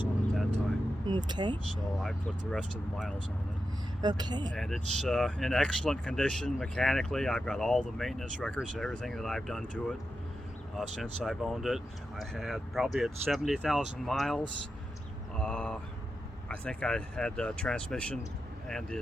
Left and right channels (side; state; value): both; normal; correlation 0.89